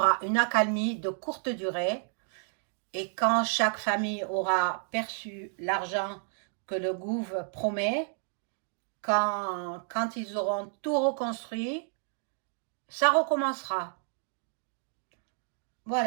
une accalmie de courte durée, et quand chaque famille aura perçu l'argent que le gouvernement promet, quand ils auront tout reconstruit, ça recommencera.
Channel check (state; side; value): silent; left; 57 dB below the other